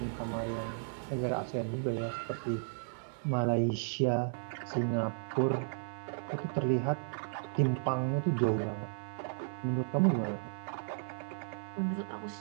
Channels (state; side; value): silent; left; digital silence